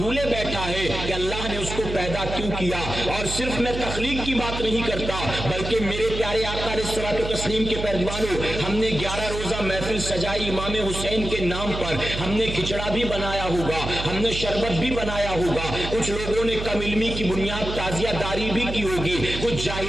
بیٹھا ہے کہ اللہ نے اس کو پیدا کیوں کیا۔ اور صرف میں تخلیق کی بات نہیں کرتا بلکہ میرے پیارے آقا علیہ الصلوۃ والتسلیم کے پیروانوں، ہم نے 11 روزہ محفل سجائی امام حسین کے نام پر، ہم نے کھچڑا بھی بنایا ہوگا، ہم نے شربت بھی بنایا ہوگا، کچھ لوگوں نے کم علمی کی بنیاد تعزیہ داری بھی کی ہوگی، کچھ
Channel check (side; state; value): right; noise; hum, 6 dB below the sound